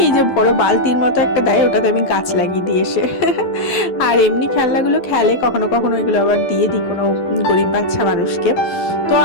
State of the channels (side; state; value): right; late; 11 ms